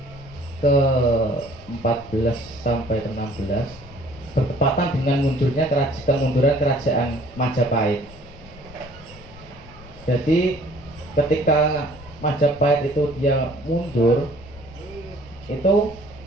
ke-14 sampai ke-16, bertepatan dengan kemunduran kerajaan Majapahit. Jadi ketika Majapahit itu dia mundur, itu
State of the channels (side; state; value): left; noise; rumble, 19 dB below the sound